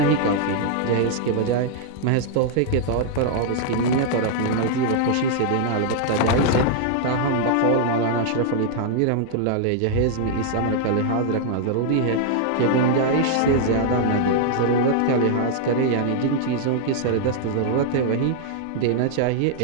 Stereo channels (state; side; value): different; both; correlation -0.01